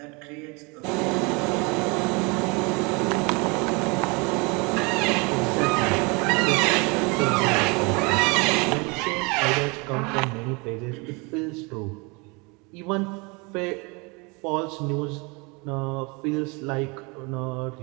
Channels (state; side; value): quieter; left; 28.8 dB